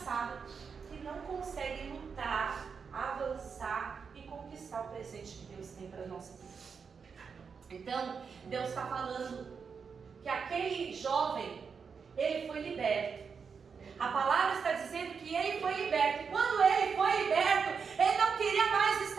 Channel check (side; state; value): left; quieter; 5.9 dB